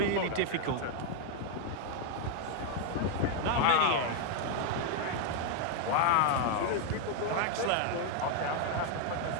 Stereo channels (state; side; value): different; both; correlation 0.00